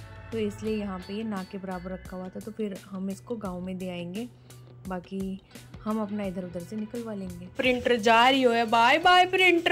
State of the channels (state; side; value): identical; both; correlation 1.00